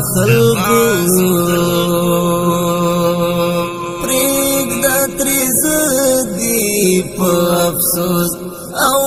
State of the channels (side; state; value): both; identical; correlation 1.00